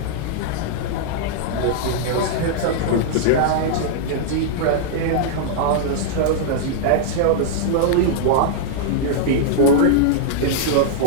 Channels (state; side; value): different; both; correlation -0.01